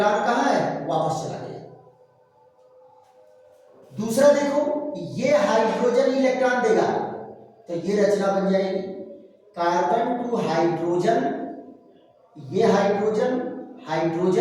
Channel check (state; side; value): identical; both; correlation 1.00